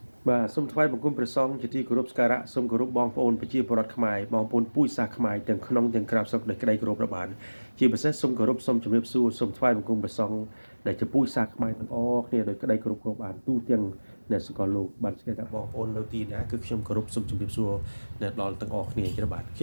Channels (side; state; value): both; inverted; correlation -1.00